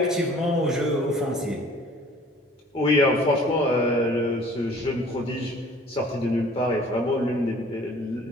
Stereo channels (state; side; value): normal; both; correlation 0.51